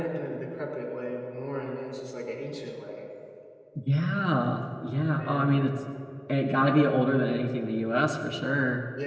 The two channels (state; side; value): identical; both; correlation 1.00